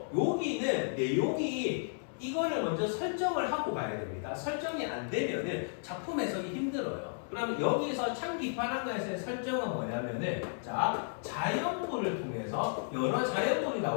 여기는 내용이 이거를 먼저 설정을 하고 가야 됩니다. 설정이 안 되면은 작품 해석이 힘들어요. 그럼 여기서 참기파랑가에서의 설정은 뭐냐면은 자, 자연물을 통해서 여러 자연물이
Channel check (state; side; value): silent; right; digital silence